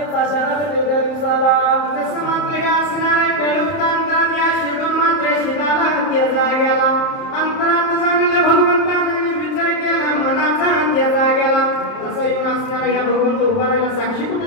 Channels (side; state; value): right; late; 30 ms